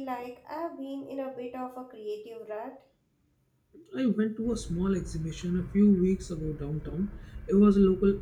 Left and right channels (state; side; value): identical; both; correlation 1.00